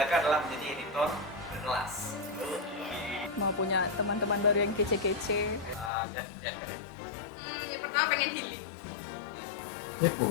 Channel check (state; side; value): drops out; right; at 5.9 s